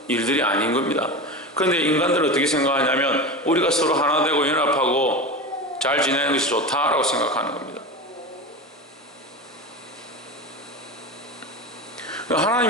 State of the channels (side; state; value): both; normal; correlation 0.26